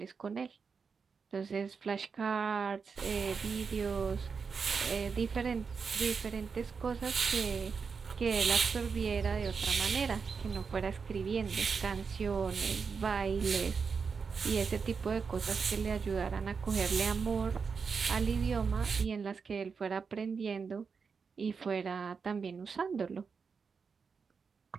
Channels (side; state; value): left; quieter; 5.5 dB